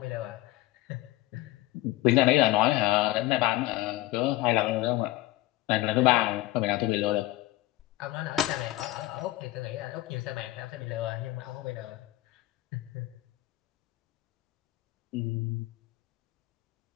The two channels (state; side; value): quieter; right; 17.3 dB